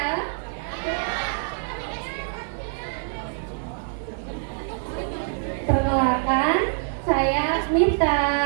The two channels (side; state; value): left; silent; digital silence